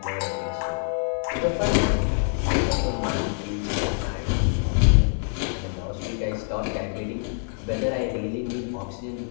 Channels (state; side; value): silent; right; 59 dB below the other